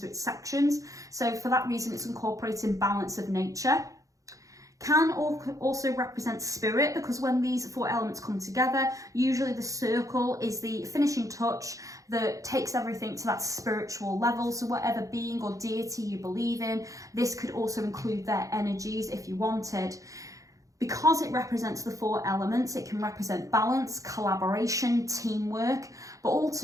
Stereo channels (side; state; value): left; late; 0.16 ms